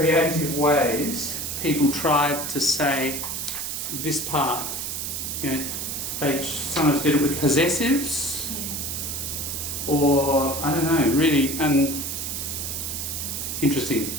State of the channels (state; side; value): noise; right; hiss, 4 dB below the sound